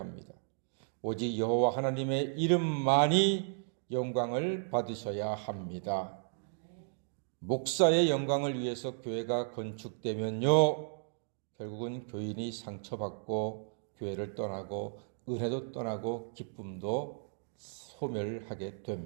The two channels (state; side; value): silent; left; digital silence